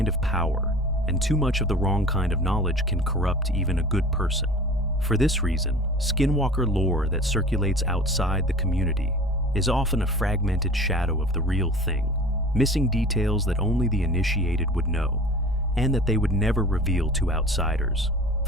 of power, and too much of the wrong kind of knowledge can corrupt even a good person. For this reason, skinwalker lore that circulates outside the community is often a fragmented shadow of the real thing, missing details that only the initiated would know, and that they would never reveal to outsiders.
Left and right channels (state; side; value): normal; both; correlation 0.41